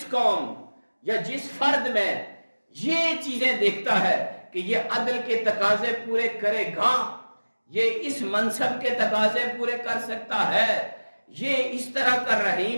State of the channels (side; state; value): both; inverted; correlation -1.00